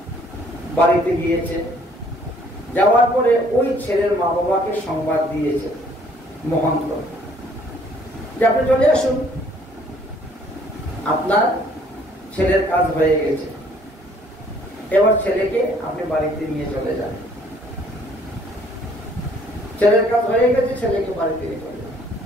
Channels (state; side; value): normal; both; correlation 0.60